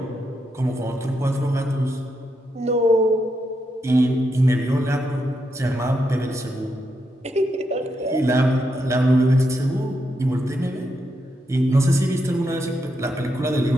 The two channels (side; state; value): both; normal; correlation 0.82